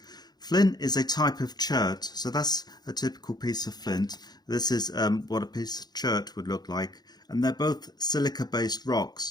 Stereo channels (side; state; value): right; late; 0.20 ms